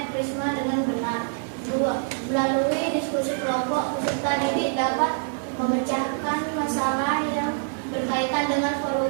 prisma dengan benar. 2. Melalui diskusi kelompok, peserta didik dapat memecahkan masalah yang berkaitan dengan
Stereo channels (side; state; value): left; silent; digital silence